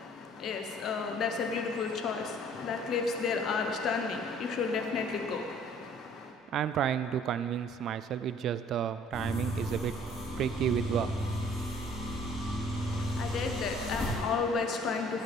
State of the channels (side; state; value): both; normal; correlation 0.55